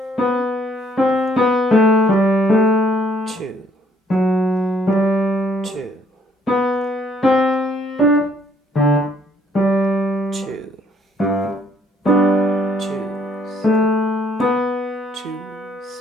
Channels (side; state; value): both; normal; correlation 0.65